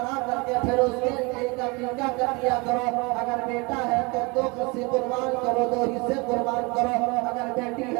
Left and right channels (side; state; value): left; quieter; 27.6 dB